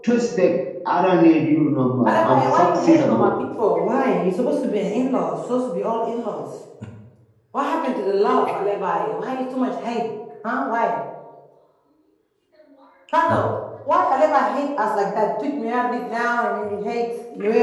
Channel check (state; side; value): identical; both; correlation 1.00